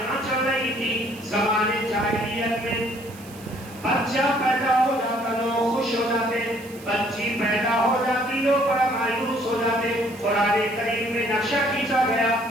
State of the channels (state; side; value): noise; right; hiss, 20 dB below the sound